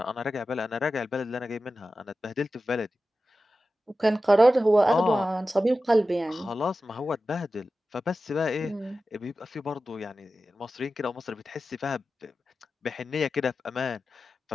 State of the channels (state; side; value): normal; both; correlation 0.93